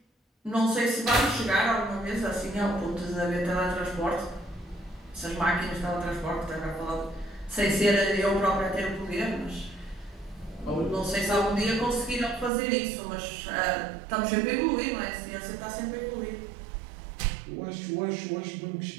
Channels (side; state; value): left; drops out; at 12.5 s